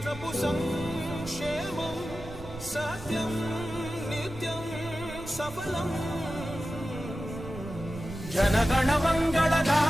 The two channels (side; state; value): right; noise; rumble, 14 dB below the sound